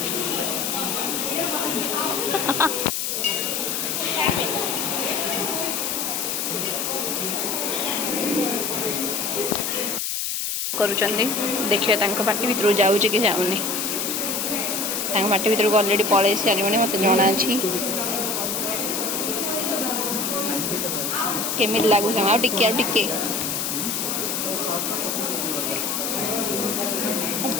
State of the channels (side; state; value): left; noise; hiss, 1 dB below the sound